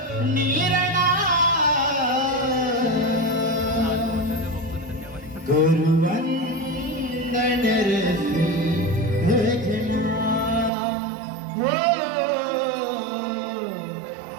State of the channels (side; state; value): left; drops out; at 10.7 s